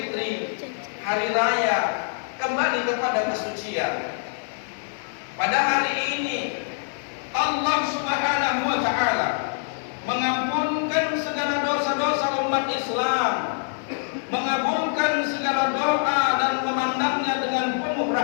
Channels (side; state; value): right; silent; 58 dB below the other